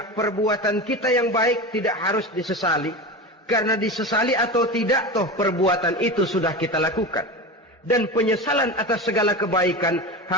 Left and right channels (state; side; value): normal; both; correlation 0.26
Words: perbuatan kita yang baik tidak harus disesali. Karena disesali atau tidak, toh perbuatan itu sudah kita lakukan. Dan penyesalan atas segala kebaikan